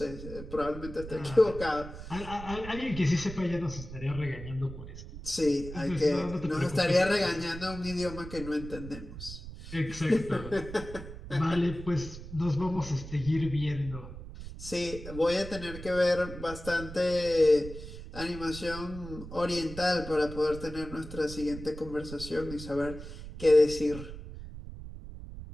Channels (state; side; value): noise; right; rumble, 11 dB below the sound